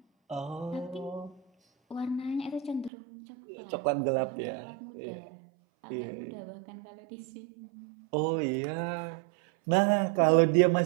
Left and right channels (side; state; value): left; drops out; at 2.9 s